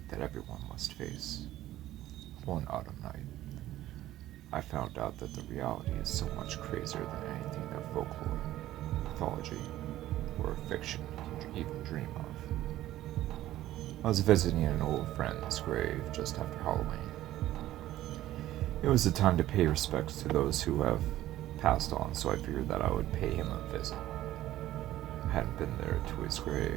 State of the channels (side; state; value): left; quieter; 14.3 dB